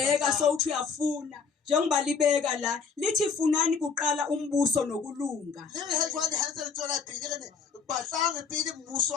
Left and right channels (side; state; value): right; quieter; 5.6 dB